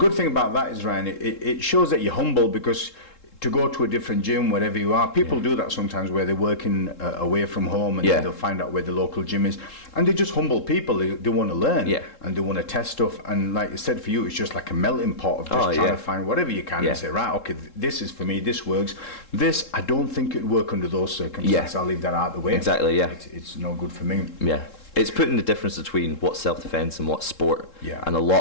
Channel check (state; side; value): late; right; 3.7 ms